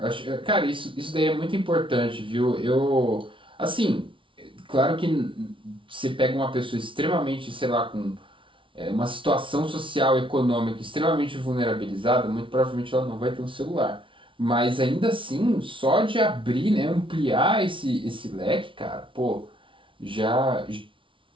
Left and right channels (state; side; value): late; left; 0.25 ms